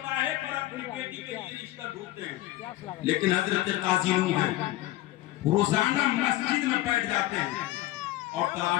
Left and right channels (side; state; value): right; quieter; 16.8 dB